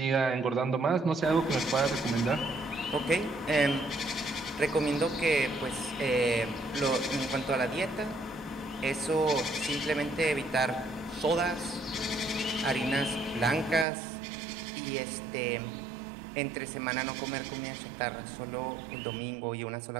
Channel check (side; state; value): left; drops out; at 13.9 s